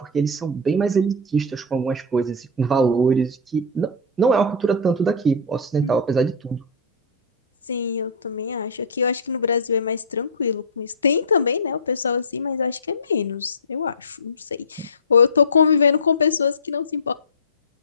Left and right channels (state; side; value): normal; both; correlation -0.10